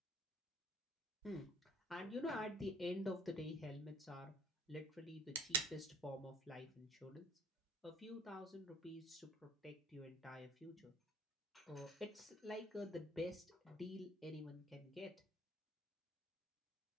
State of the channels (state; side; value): normal; both; correlation 0.53